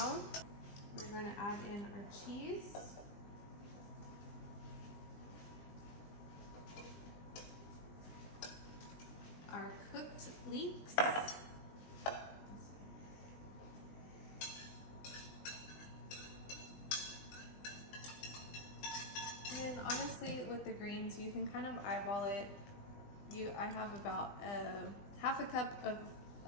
we're gonna add in our cheese. Our cooked leeks. And honestly, with the greens, you can kind of eyeball it. I have about half a cup of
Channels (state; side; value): late; right; 20 ms